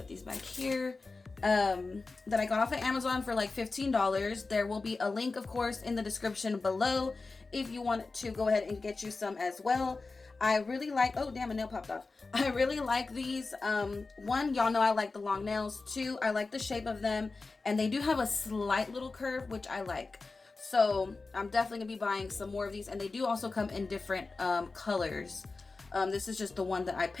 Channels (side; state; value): right; quieter; 3.8 dB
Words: these back here. That I got off of Amazon for like $15. There will be a link, of course, in the description below if you want to go ahead and get you some as well. I really like, oh damn, a nail popped off. I really like these. One, y'all know I like the long nails. Two, I like the shape of them, and they do have a slight little curve, which I like. So I'm definitely gonna be buying some more of these, and they do also come in different colors. This is just the one that I